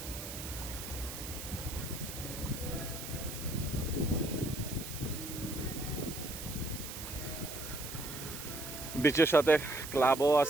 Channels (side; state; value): right; noise; hiss, 9 dB below the sound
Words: বিচের সাথে ক্লাবও